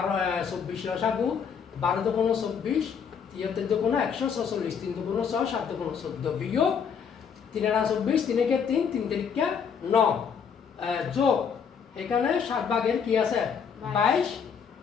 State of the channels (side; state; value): right; quieter; 6.9 dB